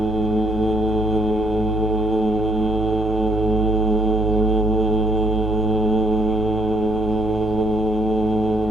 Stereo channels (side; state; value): both; normal; correlation 0.70